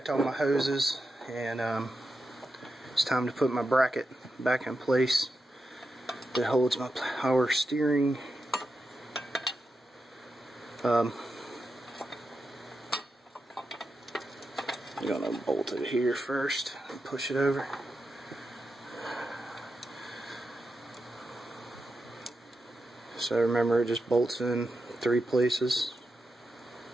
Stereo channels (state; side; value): normal; both; correlation 0.88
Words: all my hoses, and it's time to put my bracket back in place that holds my power steering. I'm gonna bolt it here first and push it over. So remember, it just bolts in 3 places.